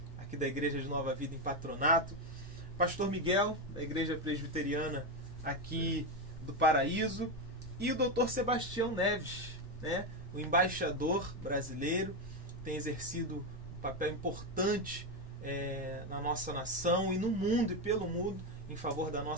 aqui da Igreja de Nova Vida em Patronato, pastor Miguel, da Igreja Presbiteriana aqui do Paraíso, e o doutor Sebastião Neves, né, o embaixador brasileiro, tem exercido um papel importante na nossa nação e no mundo e pelo mundo em favor da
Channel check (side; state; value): both; normal; correlation 0.10